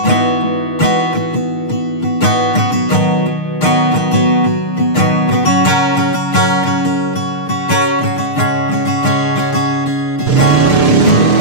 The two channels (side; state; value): right; late; 6.6 ms